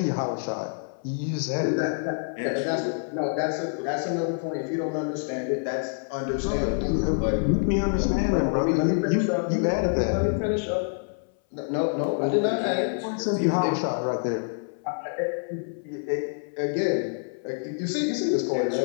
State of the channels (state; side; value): silent; right; 60 dB below the other